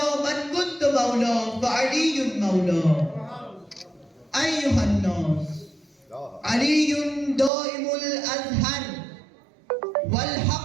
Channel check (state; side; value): drops out; left; at 7.5 s